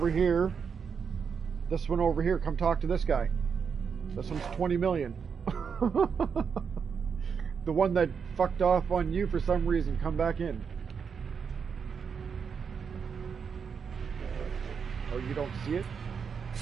here. This one over here, come talk to this guy. This one's 20 million. The one that fucked off on you for some reason, come back in. Oh, you don't see it?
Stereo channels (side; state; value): left; quieter; 6.3 dB